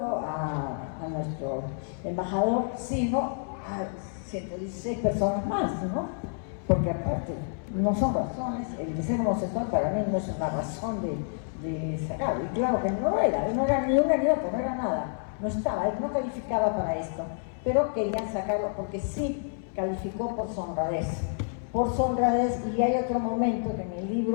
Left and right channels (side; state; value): right; silent; 59 dB below the other